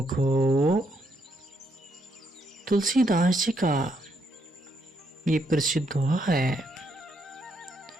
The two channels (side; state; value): both; normal; correlation 0.76